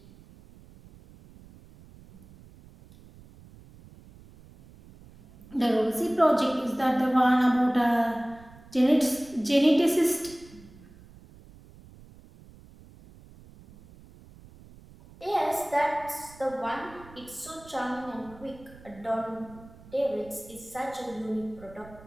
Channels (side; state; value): right; noise; rumble, 22 dB below the sound